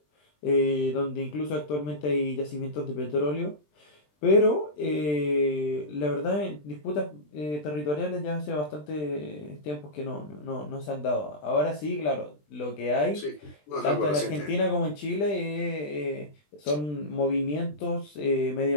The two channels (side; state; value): right; late; 20 ms